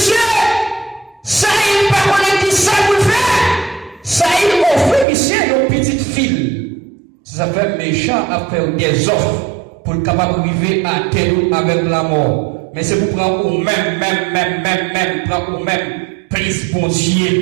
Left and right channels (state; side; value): drops out; left; at 5.1 s